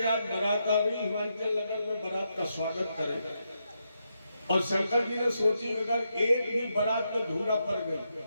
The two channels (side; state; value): both; inverted; correlation -0.83